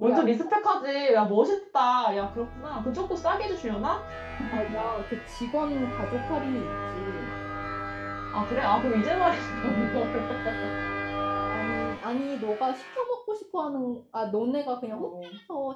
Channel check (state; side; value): identical; both; correlation 1.00